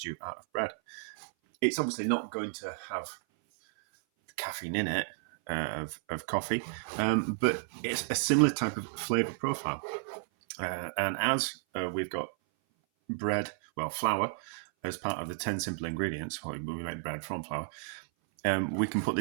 out of bread. It's obviously not going to have caffeine in it of coffee, but it's a similar type of flavour profile. And as we've got bread, flour, as part of the 10 simple ingredients, we make bread from flour, we can put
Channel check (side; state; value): left; silent; 56 dB below the other